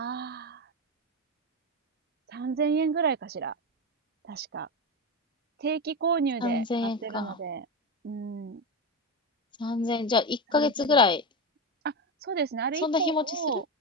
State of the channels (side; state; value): both; normal; correlation 0.16